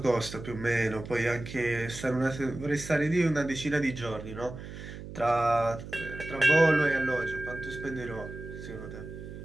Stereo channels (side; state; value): right; noise; hum, 11 dB below the sound